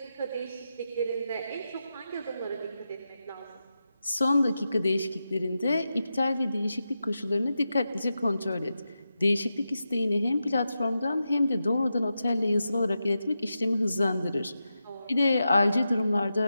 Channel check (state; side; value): inverted; both; correlation -0.89